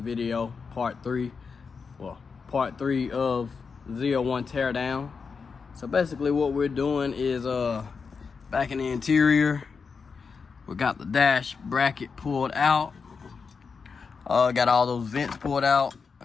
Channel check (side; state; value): right; quieter; 5.3 dB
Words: part 3 of ZL1 teardown. So basically what we're doing is back in the interior, we got the dash bracket pulled out, got all those vents pulled out,